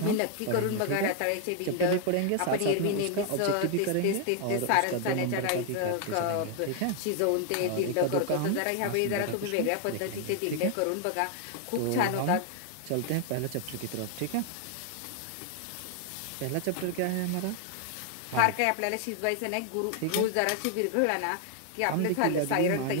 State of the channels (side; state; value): both; different; correlation 0.00